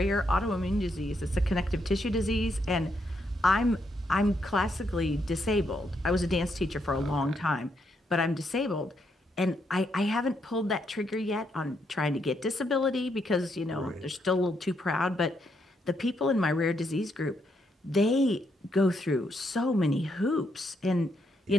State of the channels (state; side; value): normal; both; correlation 0.77